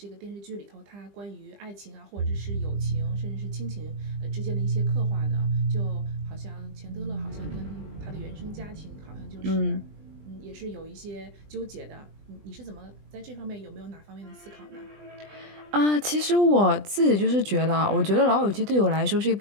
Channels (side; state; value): left; late; 20 ms